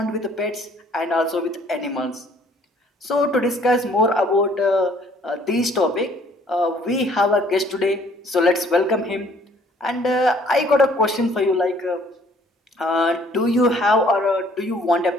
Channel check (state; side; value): normal; both; correlation 0.60